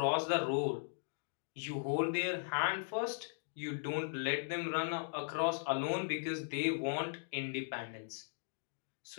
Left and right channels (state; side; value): silent; right; digital silence